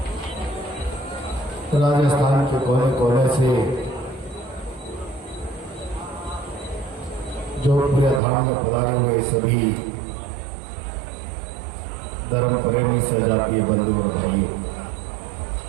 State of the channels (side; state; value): left; drops out; at 8.2 s